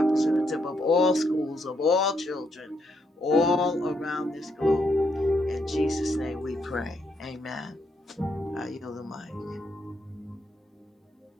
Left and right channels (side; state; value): both; normal; correlation 0.77